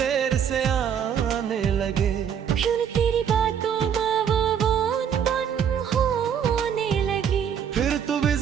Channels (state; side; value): quieter; left; 8.2 dB